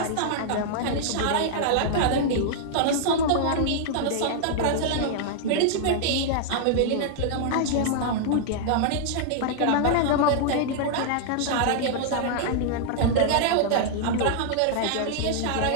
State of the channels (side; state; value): both; different; correlation -0.01